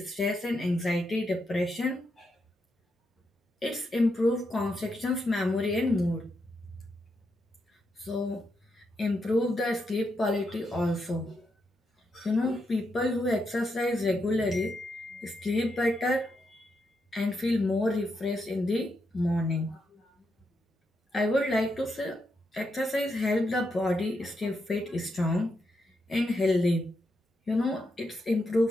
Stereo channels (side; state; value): both; normal; correlation 0.82